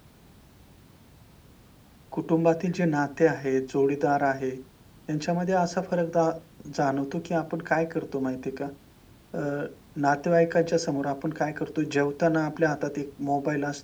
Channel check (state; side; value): identical; both; correlation 1.00